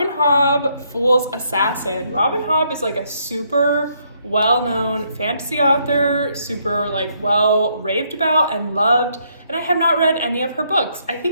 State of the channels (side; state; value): both; inverted; correlation -0.72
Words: Hobb, Fool's Assassin. Robin Hobb is like a super well-known fantasy author, super like well raved about and loved, and I have not read any of her books. I